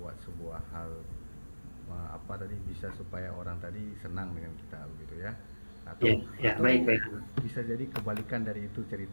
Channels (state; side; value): inverted; both; correlation -1.00